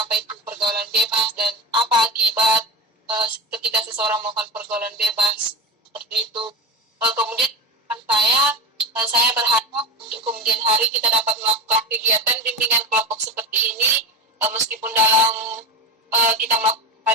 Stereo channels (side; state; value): both; normal; correlation 0.23